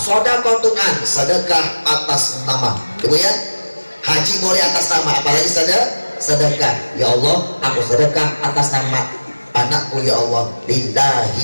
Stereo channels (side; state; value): both; inverted; correlation -1.00